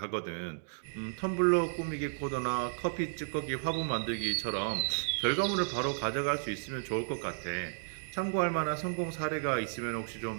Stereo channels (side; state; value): left; silent; digital silence